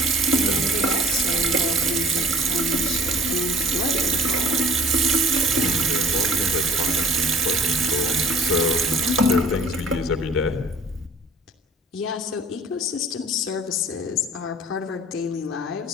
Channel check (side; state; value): both; normal; correlation 0.48